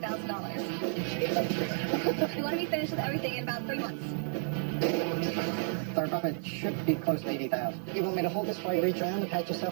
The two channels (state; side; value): silent; left; digital silence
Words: We want to be finished with everything in about 3 months. Our profit should be close to $80,000. You want me to hold this while you reach around and pat